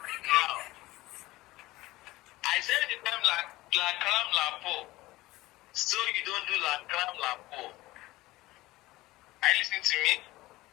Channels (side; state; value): right; quieter; 18.7 dB